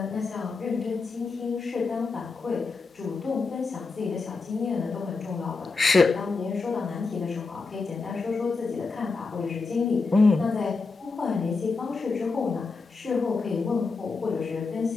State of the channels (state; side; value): quieter; right; 4.2 dB